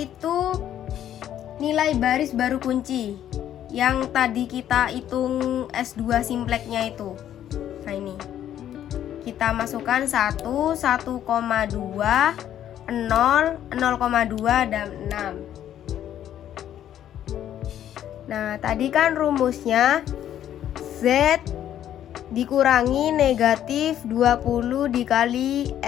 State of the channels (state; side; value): quieter; right; 11.0 dB